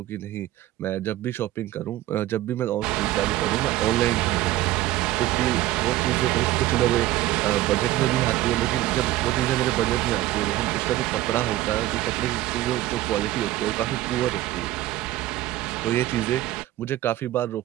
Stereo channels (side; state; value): left; quieter; 15.7 dB